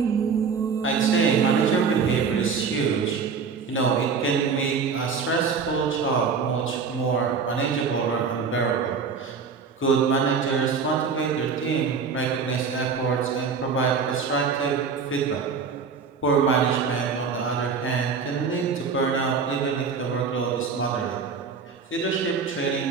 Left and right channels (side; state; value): left; quieter; 5.6 dB